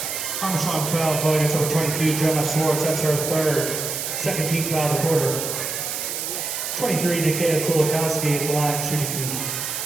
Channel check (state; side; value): noise; right; hiss, 4 dB below the sound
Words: Armstrong foul called against number 22, Gemma Swartz. That's her second team foul of the quarter. 23, Nikita Kolakowski at the line, shooting